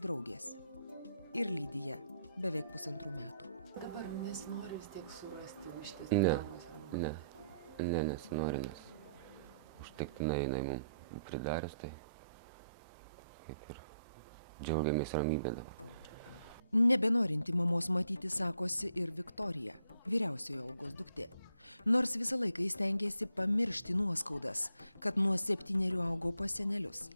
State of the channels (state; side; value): inverted; both; correlation -0.73